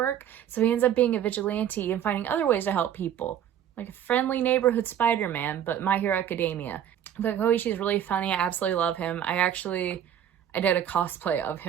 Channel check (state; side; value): quieter; left; 9.9 dB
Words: So he ends up being a vigilante and finding other ways to help people. Like a friendly neighborhood Spider-Man, but My Hero Academia. But Koichi is really funny. I absolutely love him. I did a cosplay of